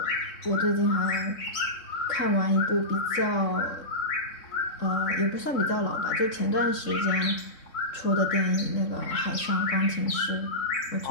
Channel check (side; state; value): right; late; 3.6 ms